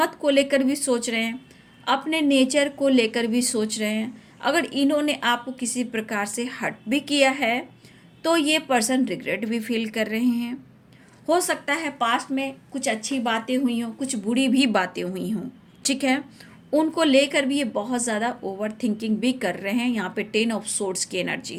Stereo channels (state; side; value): identical; both; correlation 1.00